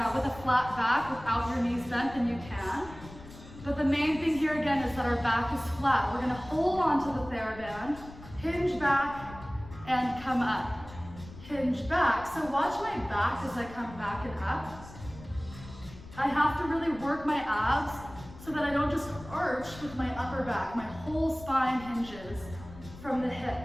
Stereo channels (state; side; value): noise; left; rumble, 17 dB below the sound